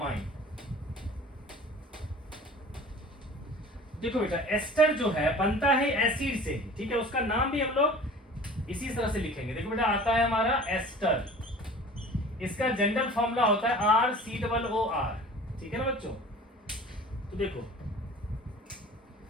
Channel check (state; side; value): normal; both; correlation 0.43